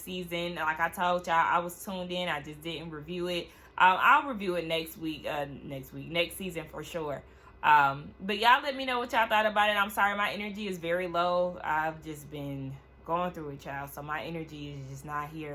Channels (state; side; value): identical; both; correlation 1.00